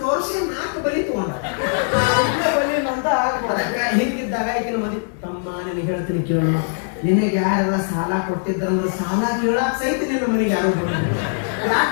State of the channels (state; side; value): silent; right; 61 dB below the other